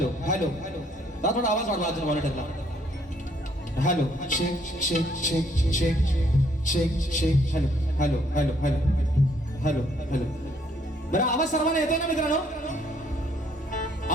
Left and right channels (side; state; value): both; normal; correlation 0.67